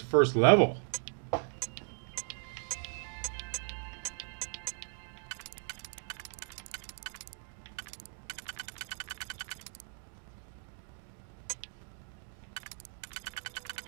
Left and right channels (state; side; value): silent; left; 53 dB below the other